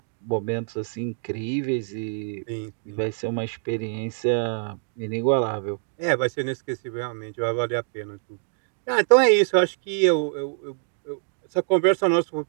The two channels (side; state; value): left; silent; digital silence